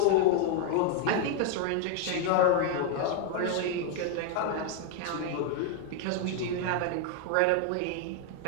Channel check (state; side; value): different; both; correlation 0.00